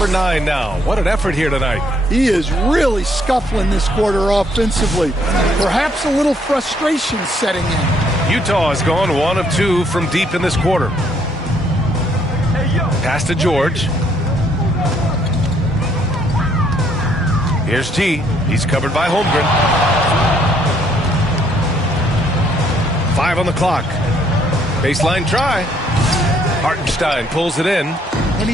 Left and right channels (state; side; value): normal; both; correlation 0.68